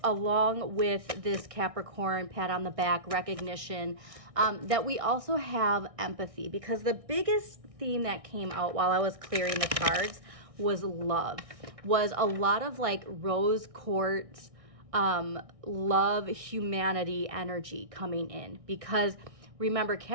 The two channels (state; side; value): late; left; 1.6 ms